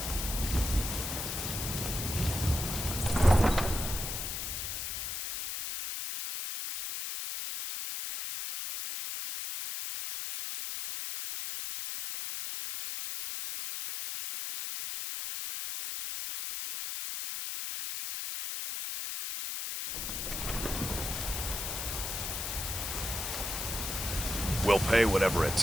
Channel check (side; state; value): left; noise; hiss, 4 dB below the sound